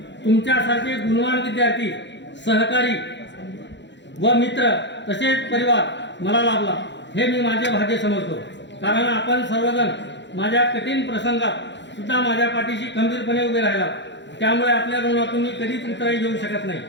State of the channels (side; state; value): right; late; 0.52 ms